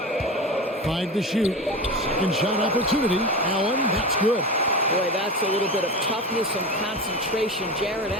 5 to shoot. Second shot opportunity. Allen, that's good. Boy, that's a little bit of toughness and concentration. Jarrett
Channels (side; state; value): both; normal; correlation 0.26